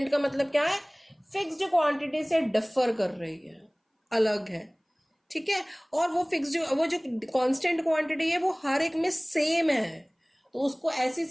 का मतलब क्या है? फिक्स्ड क्वांटिटी से डिफर कर रही है, अलग है. ठीक है, और वो फिक्स्ड, वो जो कांस्टेंट क्वांटिटी है वो हर एक में सेम है, तो उसको ऐसी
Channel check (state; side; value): identical; both; correlation 1.00